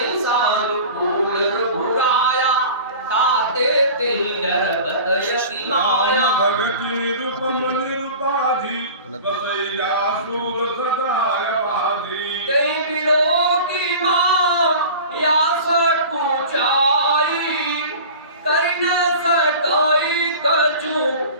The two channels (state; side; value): inverted; both; correlation -0.38